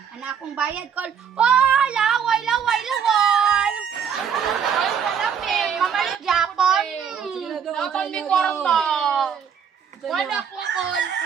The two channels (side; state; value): left; quieter; 7.5 dB